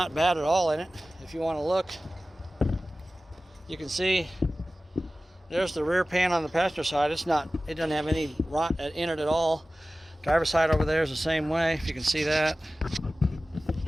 bad at all in it. If you want to look, you can see there's the rear pan on the passenger side. It doesn't have any rot in it at all. Driver's side over there is the same way, if you can see that.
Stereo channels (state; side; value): normal; both; correlation 0.96